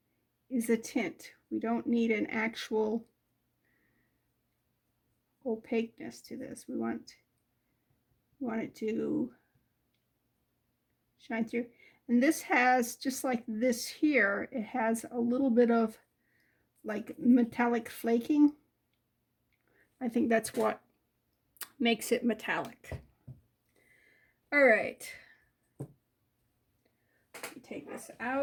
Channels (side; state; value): both; identical; correlation 1.00